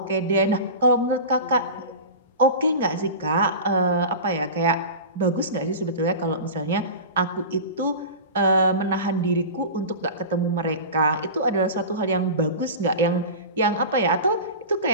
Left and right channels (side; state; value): both; inverted; correlation -0.31